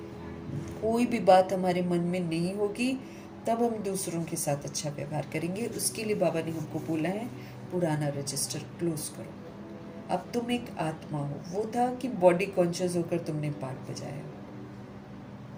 कोई भी बात हमारे मन में नहीं होगी तब हम दूसरों के साथ अच्छा व्यवहार करेंगे। उसके लिए बाबा ने हमको बोला है पुराना रजिस्टर क्लोज करो। अब तुम एक आत्मा हो, वो था कि बॉडी कॉन्शियस होकर तुमने पाठ बजाया।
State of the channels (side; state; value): both; identical; correlation 1.00